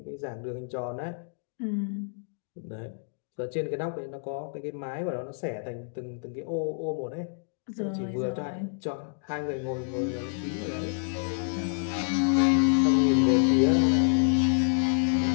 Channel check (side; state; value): right; silent; digital silence